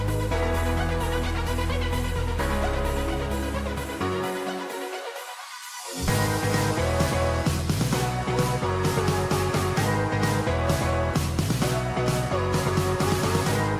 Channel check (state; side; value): identical; both; correlation 1.00